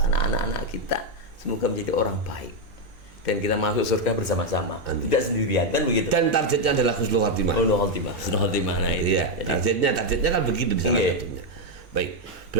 anak-anak kita semoga menjadi orang baik dan kita masuk surga bersama-sama, tidak sendirian, kan begitu. Dan targetnya adalah husnul khotimah. Husnul khotimah. Nah itu ya. Targetnya kan begitu di salah satunya. Baik,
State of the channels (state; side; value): normal; both; correlation 0.02